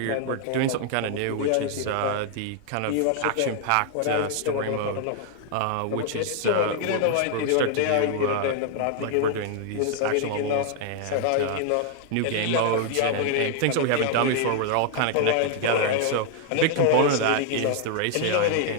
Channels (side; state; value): both; different; correlation 0.00